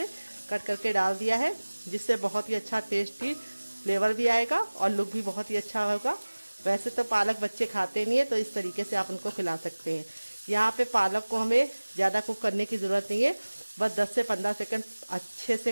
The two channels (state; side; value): inverted; both; correlation -1.00